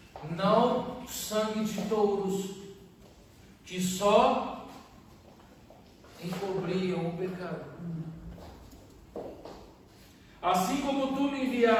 Não sangue de touros, que só encobriam o pecado. Assim como tu me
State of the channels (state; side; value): identical; both; correlation 1.00